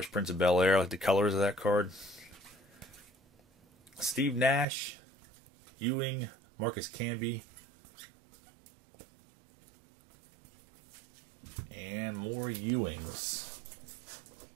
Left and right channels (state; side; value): drops out; left; at 4.7 s